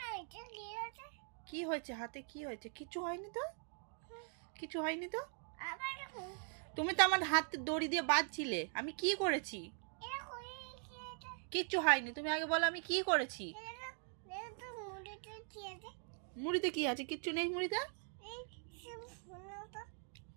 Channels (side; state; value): left; silent; 50 dB below the other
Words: কি হয়েছে হাতে? কি হয়েছে? কিছু হয়নি তো, কিছু হয়নি তো। তুমি তো আমার হাতে দড়ি দিয়ে বাঁধছিলে, আমি কি করেছি? কিচ্ছু হয়নি, তুমি আগে বলো আমি কি করেছি। মুড়িতে কি আছে? কিচ্ছু নেই মুড়িতে।